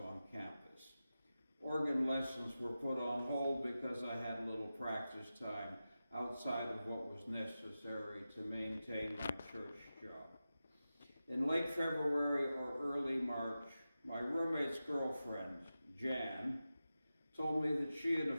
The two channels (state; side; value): inverted; both; correlation -0.93